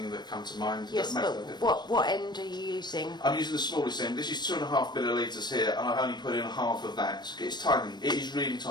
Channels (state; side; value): late; right; 0.21 ms